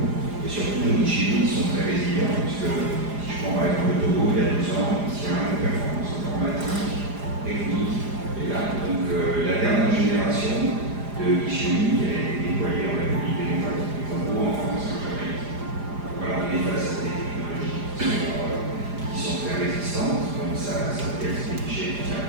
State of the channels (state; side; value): late; left; 4.9 ms